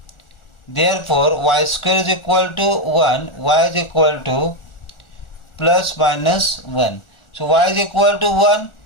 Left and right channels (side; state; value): right; late; 1.4 ms